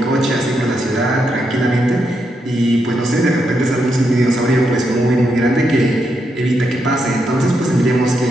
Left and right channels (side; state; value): both; normal; correlation 0.81